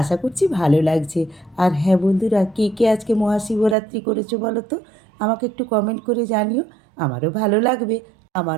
আশা করছি ভালো লাগছে। আর হ্যাঁ বন্ধুরা, কে কে আজকে মহাশিবরাত্রি করেছো বলো তো, আমাকে একটু কমেন্ট করে জানিও, আমারও ভালো লাগবে।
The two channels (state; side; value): drops out; left; at 3.8 s